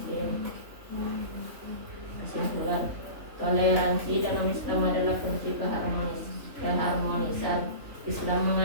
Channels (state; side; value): late; left; 3.4 ms